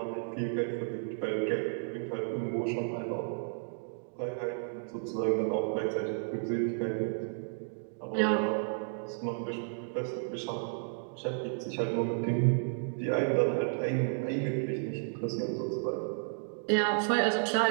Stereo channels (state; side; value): silent; left; digital silence